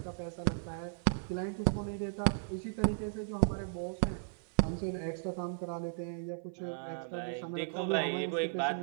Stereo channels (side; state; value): left; silent; 54 dB below the other